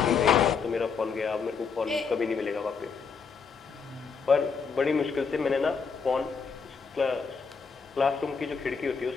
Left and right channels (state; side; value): quieter; right; 5.6 dB